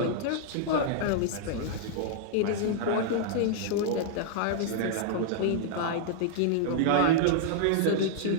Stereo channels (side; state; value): both; different; correlation -0.01